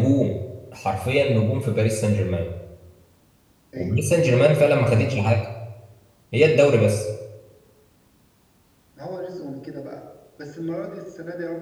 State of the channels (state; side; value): identical; both; correlation 1.00